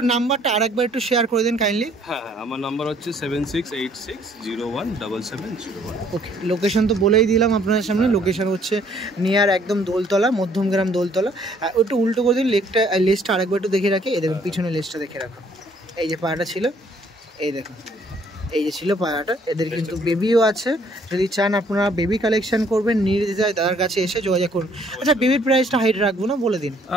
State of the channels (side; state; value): both; normal; correlation 0.63